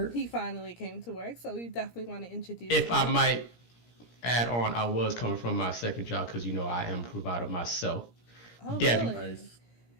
He finally came to work, so we definitely want to introduce If him. I might add on, I was coming from my second job because I am a provider myself. Oh, Debbie. really? Nice.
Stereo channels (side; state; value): right; late; 17 ms